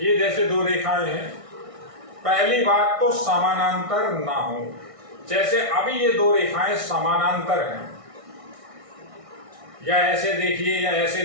जैसे दो रेखाएं हैं, पहली बात तो समानांतर ना हो। जैसे अभी ये दो रेखाएं समानांतर हैं, या ऐसे देखिए या ऐसे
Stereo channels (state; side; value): late; left; 1.6 ms